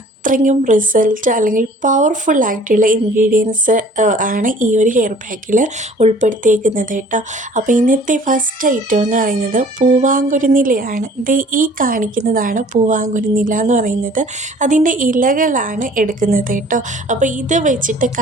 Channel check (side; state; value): both; normal; correlation 0.51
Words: റിസൾട്ട് അല്ലെങ്കിൽ പവർഫുള്ളായിട്ടുള്ള ഇൻഗ്രീഡിയൻസ് ആണ് ഈ ഒരു ഹെയർ പാക്കിൽ ഉൾപ്പെടുത്തിയേക്കുന്നത് കേട്ടോ. അപ്പോൾ ഇന്നത്തെ ഫസ്റ്റ് ഐറ്റം എന്ന് പറയുന്നത് പൂവാങ്കുരുന്നിലയാണ്. ഈ കാണിക്കുന്നതാണ് പൂവാങ്കുരുന്നില എന്ന് പറയുന്നത്. അതിൻ്റെ ഇലകളാണ് എടുക്കുന്നത് കേട്ടോ. അപ്പോൾ ഇത് വെച്ചിട്ട്